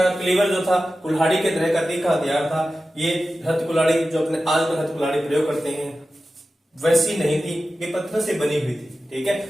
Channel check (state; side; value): normal; both; correlation 0.94